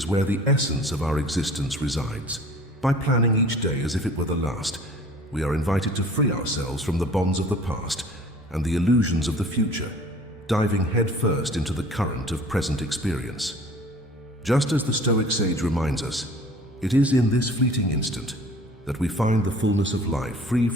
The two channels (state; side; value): normal; both; correlation 0.48